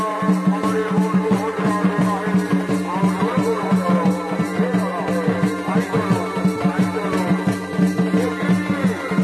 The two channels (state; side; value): identical; both; correlation 1.00